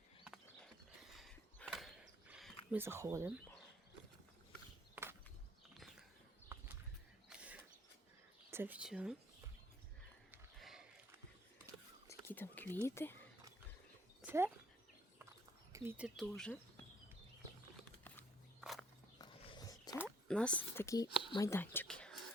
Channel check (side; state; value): both; normal; correlation 0.64